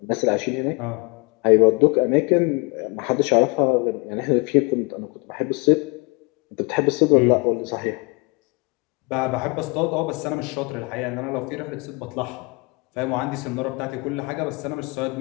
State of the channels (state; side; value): quieter; right; 28.9 dB